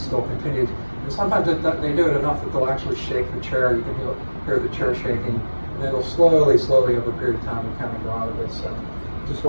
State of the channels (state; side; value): inverted; both; correlation -1.00